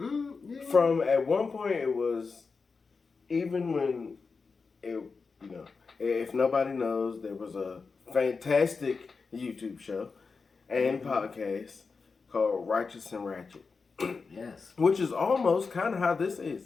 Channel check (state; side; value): quieter; right; 4.7 dB